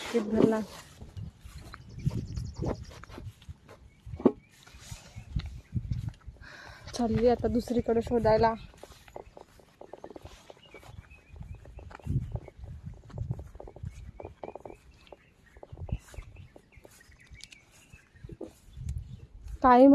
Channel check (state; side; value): identical; both; correlation 1.00